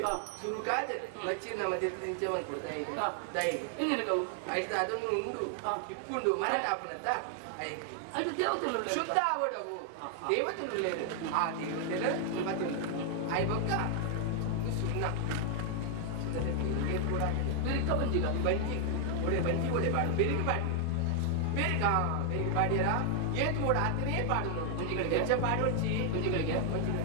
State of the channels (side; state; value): both; different; correlation 0.00